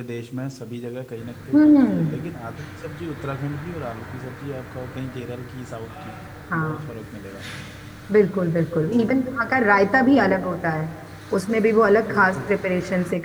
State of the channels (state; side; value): identical; both; correlation 1.00